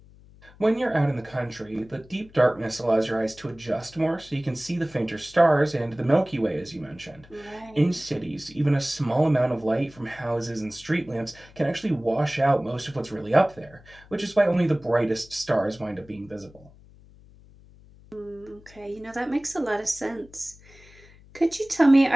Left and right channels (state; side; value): noise; left; hum, 24 dB below the sound